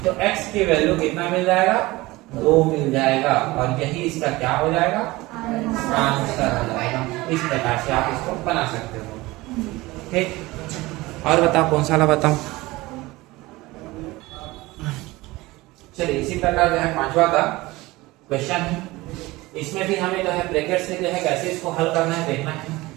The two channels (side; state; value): left; quieter; 20.4 dB